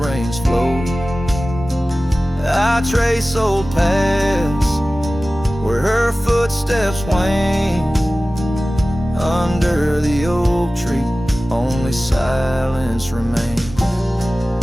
rains flow. I trace old paths where her foot footsteps wane under the oak tree, only silence remains.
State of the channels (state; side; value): normal; both; correlation 0.97